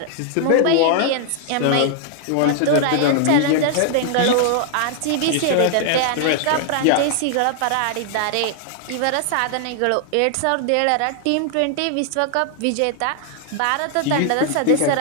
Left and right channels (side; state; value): both; different; correlation 0.00